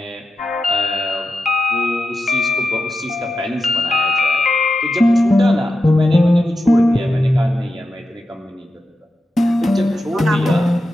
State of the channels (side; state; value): both; normal; correlation 0.90